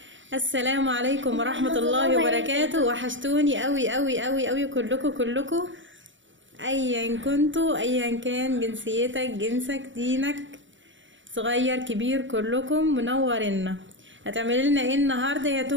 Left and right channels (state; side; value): late; left; 0.55 ms